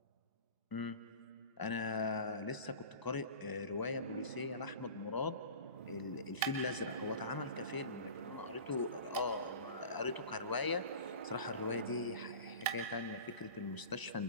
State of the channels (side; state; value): both; inverted; correlation -0.37